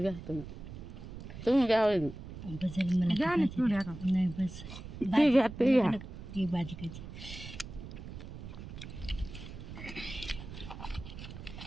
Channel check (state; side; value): noise; right; rumble, 11 dB below the sound